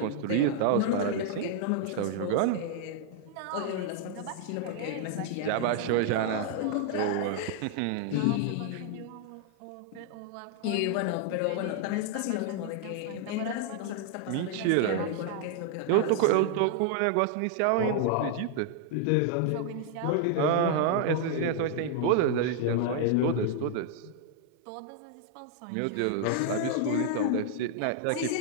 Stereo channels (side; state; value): both; different; correlation 0.00